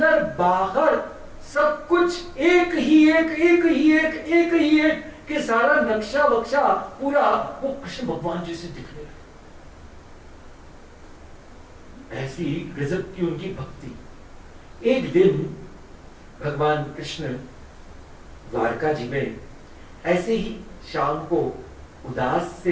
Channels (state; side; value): identical; both; correlation 1.00